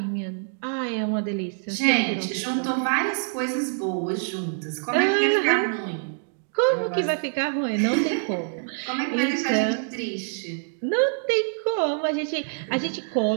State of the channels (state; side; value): silent; left; 60 dB below the other